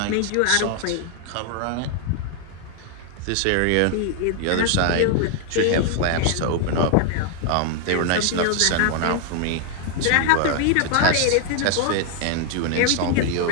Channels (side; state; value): both; different; correlation 0.00